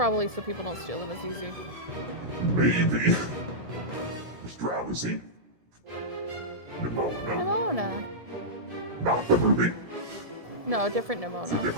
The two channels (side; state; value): left; late; 1.7 ms